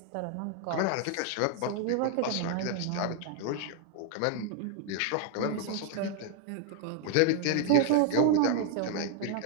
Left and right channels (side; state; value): both; different; correlation 0.00